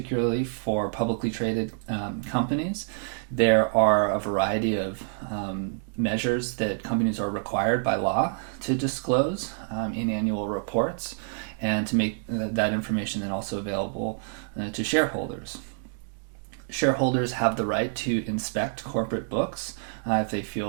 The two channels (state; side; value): silent; left; digital silence